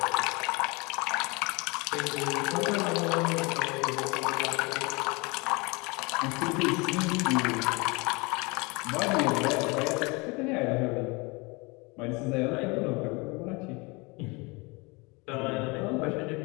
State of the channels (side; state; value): right; quieter; 27.2 dB